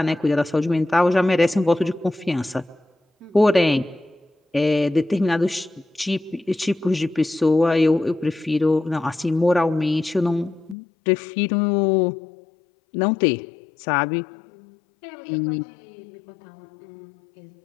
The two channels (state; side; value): drops out; right; at 10.8 s